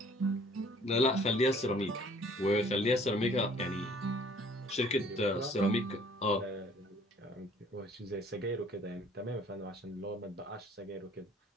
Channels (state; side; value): normal; both; correlation 0.56